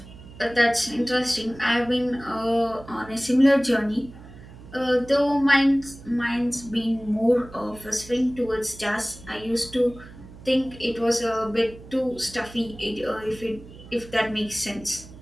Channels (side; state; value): right; noise; hum, 18 dB below the sound